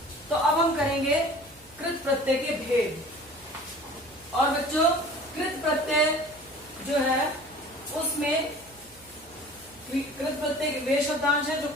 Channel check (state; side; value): noise; right; hum, 27 dB below the sound